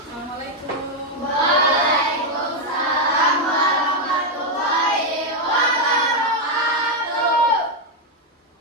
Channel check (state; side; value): normal; both; correlation 0.02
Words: Waalaikumsalam warahmatullahi wabarakatuh.